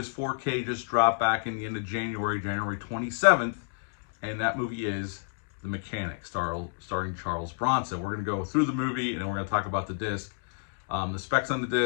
4K just dropped back in the end of January 27th. And that movie is The Mechanic, starring Charles Bronson. We're going to go through the movie and then we're going to talk about the disc. The specs on the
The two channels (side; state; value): right; silent; digital silence